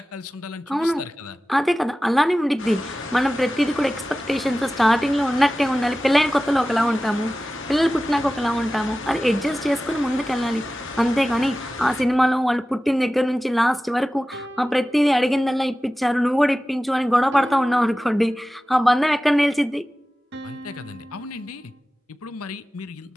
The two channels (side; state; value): both; normal; correlation 0.95